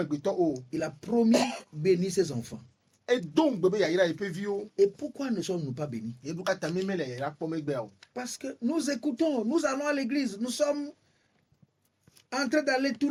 gbeto o. Il a promis bénir ses enfants. Et donc bébé yayira epe vio. Et pourquoi ne sommes-nous pas bénis? E buka tameme le yayira pour me gbe o. Parce que nous écoutons, nous allons à l'église, nous sommes en train d'aller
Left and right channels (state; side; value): identical; both; correlation 1.00